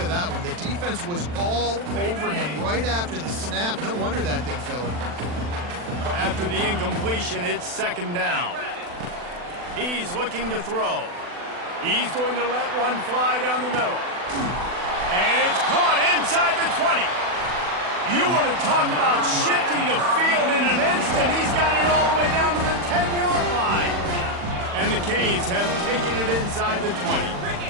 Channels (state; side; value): late; left; 40 ms